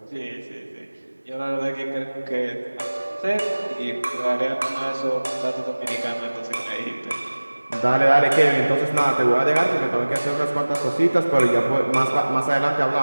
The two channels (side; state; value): both; inverted; correlation -1.00